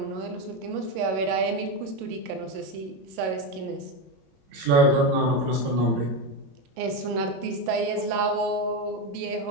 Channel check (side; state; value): left; late; 22 ms